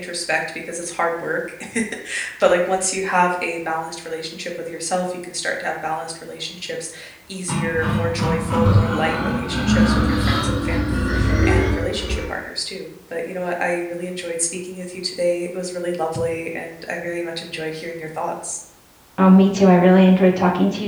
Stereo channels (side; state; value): both; identical; correlation 1.00